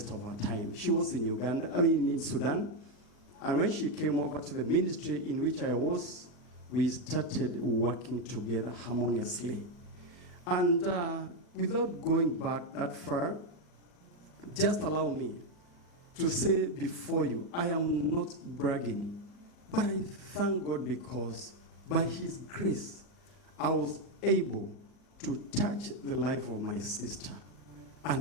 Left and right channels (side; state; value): right; late; 40 ms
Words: of our time. She was in in Sudan, and when she came over to the ministry in which I was, we started working together harmoniously. And without going back that far, just allow me to say before you, I am not bragging, but I thank God because by his grace, I was able to touch the life of my sister.